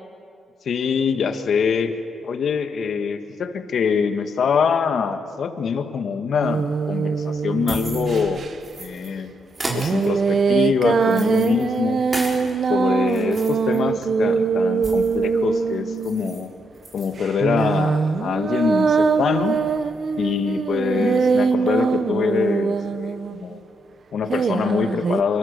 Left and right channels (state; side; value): normal; both; correlation 0.77